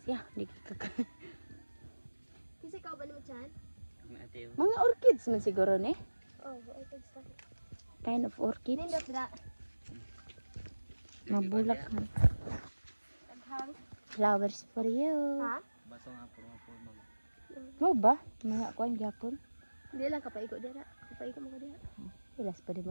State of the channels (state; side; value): inverted; both; correlation -1.00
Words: siya, di ka. Kasi ikaw ba naman dyan? Mateo. Mga orchids man siguro ni. Oh, ay pagsa. Kind of orchid. Nindot na. Mabulak man. Taghang. Flowers for you. Ha? Baso nga puro mo. Mo ba? Mga kuan gyapon. Hindi lang kapaigo dira. Kapaigo mo ka dira. Ilas pa di